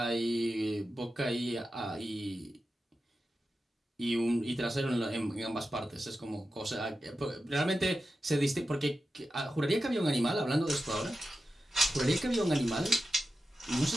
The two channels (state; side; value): normal; both; correlation 0.92